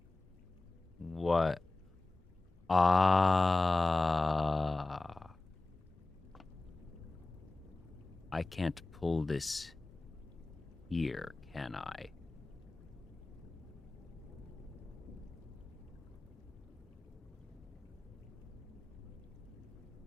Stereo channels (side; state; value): right; quieter; 3.1 dB